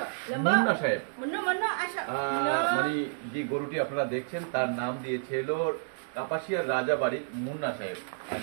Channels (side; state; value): left; silent; digital silence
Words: মুন্না সাহেব মানে যে গরুটি আপনারা দেখছেন তার নাম দিয়েছে হলো কাপাসিয়ার রাজাবাড়ির মুন্না সাহেব। আর